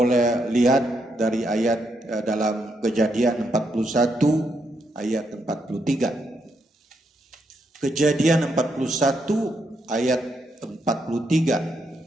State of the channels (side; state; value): both; normal; correlation 0.79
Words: lihat dari ayat dalam Kejadian 41 ayat 43. Kejadian 41 ayat